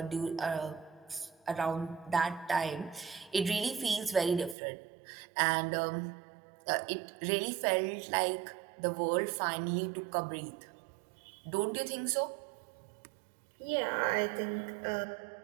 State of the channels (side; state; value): left; drops out; at 4.5 s